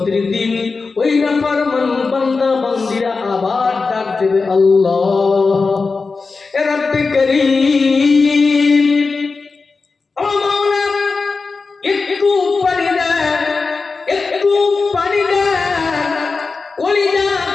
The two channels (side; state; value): right; quieter; 4.3 dB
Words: দিন ওই নাফরমান বান্দা বান্দিরা আবার ডাক দেবে, আল্লাহ রব্বে করিম, ও মাওলা একটু পানি দেন, একটু পানি দেন। কলিজা